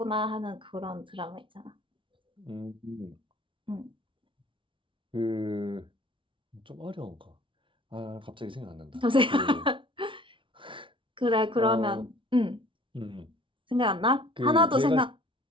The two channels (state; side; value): late; left; 0.25 ms